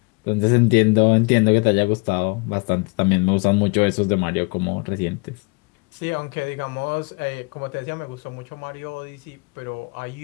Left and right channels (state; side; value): quieter; right; 30.1 dB